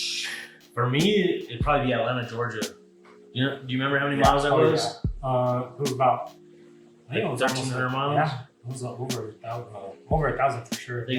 For me, it'd probably be Atlanta, Georgia. Do you remember how many miles that was? Yeah. It was about, I think it was 1,300 miles? Yeah, it was over 1,000 for sure. I think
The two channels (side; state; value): both; identical; correlation 1.00